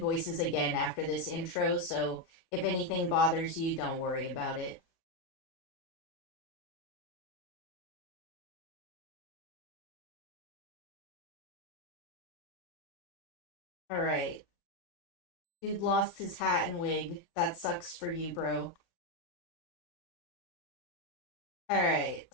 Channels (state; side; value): late; right; 37 ms